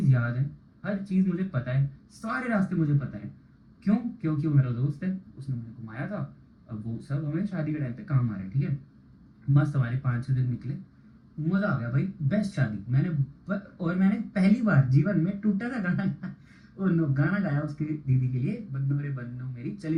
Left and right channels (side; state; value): both; identical; correlation 1.00